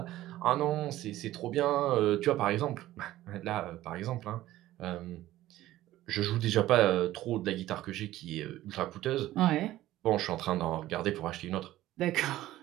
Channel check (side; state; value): left; quieter; 15.1 dB